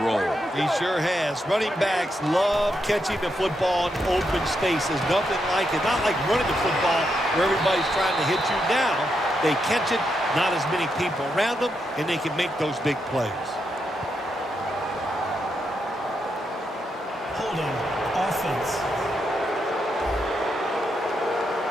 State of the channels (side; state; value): both; normal; correlation 0.82